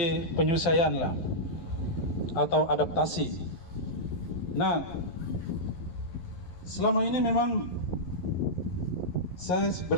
penyusuan lah atau adaptasi. Nah, selama ini memang saya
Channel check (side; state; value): right; late; 11 ms